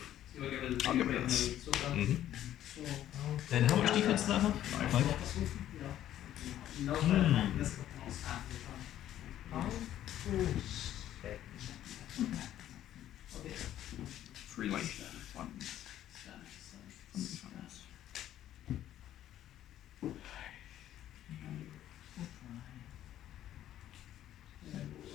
I'll get rid of this. Mm-hmm. And how much defense does that have? 5. Free life. Fun.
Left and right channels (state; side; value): quieter; right; 12.1 dB